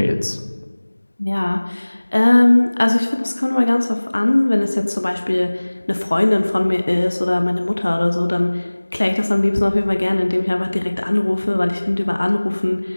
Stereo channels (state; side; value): inverted; both; correlation -1.00